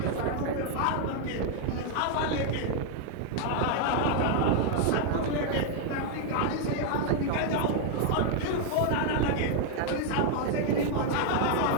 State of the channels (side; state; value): both; different; correlation 0.00